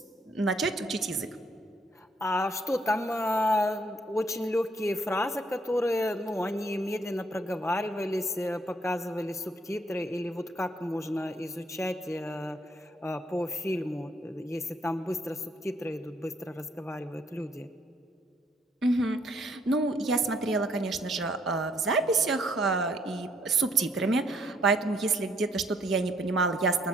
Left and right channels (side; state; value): both; normal; correlation 0.68